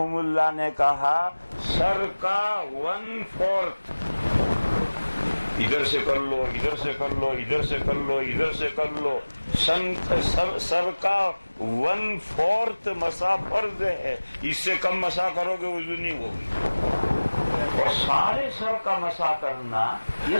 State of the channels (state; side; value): inverted; both; correlation -1.00